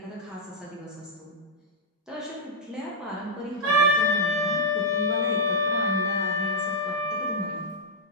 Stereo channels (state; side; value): normal; both; correlation -0.08